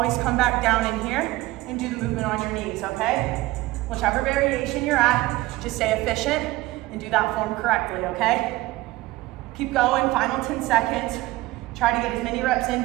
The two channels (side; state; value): left; quieter; 18.9 dB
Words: come back down in here and do the movement on your knees, okay? Whichever variation you're at, just stay efficient and do that form correctly, okay? Keep going, final 10 seconds. Try to get as many reps in